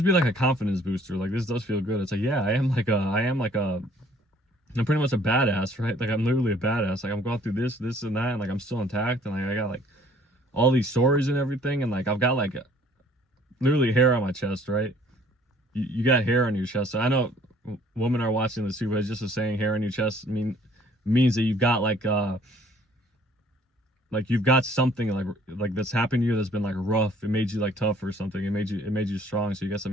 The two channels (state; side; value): normal; both; correlation 0.58